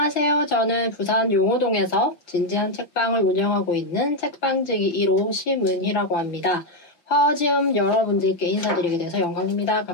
저는 부산 용호동에서 진지한 책방을 운영하고 있는 책방지기 1호 심은희라고 합니다. 화어지음 여러분들께 인사드리게 돼서 영광입니다.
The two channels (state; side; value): late; right; 5.7 ms